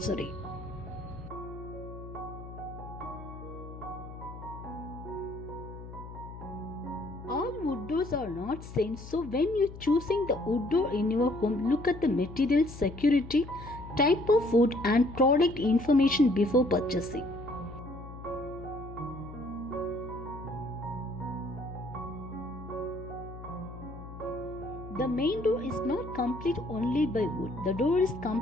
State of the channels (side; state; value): left; noise; hum, 13 dB below the sound